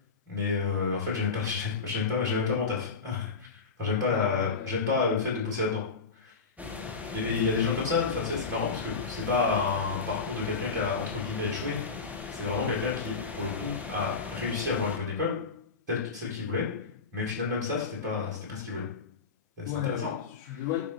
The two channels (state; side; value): quieter; right; 4.8 dB